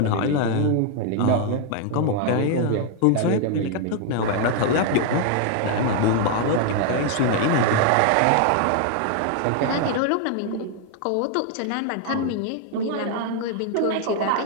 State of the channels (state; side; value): different; both; correlation 0.00